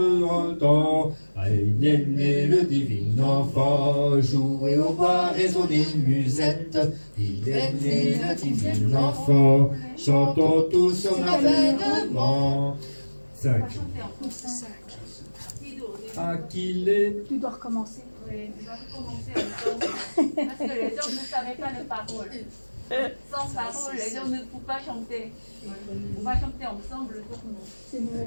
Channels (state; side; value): inverted; both; correlation -1.00